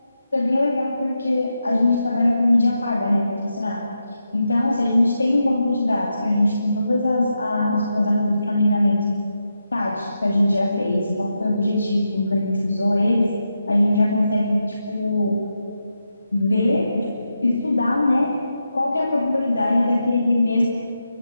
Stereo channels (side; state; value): both; inverted; correlation -0.87